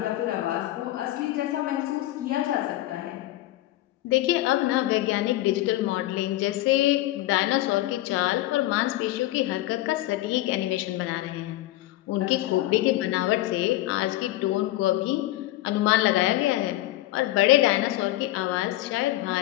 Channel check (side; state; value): right; quieter; 16.4 dB